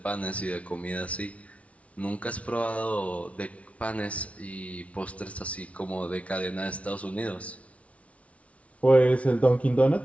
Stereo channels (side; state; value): right; late; 0.064 ms